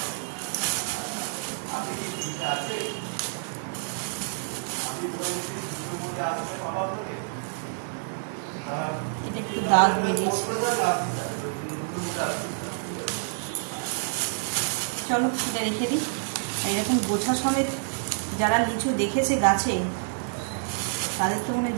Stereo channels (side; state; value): left; silent; 60 dB below the other